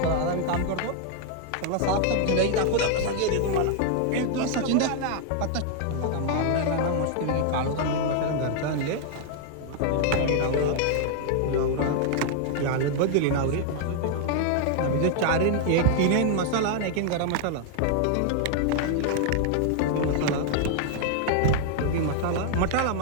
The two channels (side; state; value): both; different; correlation 0.00